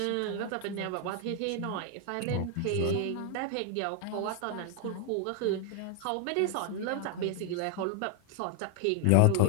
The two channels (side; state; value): both; different; correlation 0.00